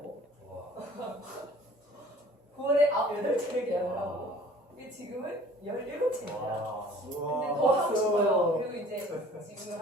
9월에 8채를 계약을 하고 지금은 17채입니다. 근데 더 하고 싶어요. 그리고 이제 지금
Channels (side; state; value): both; normal; correlation 0.50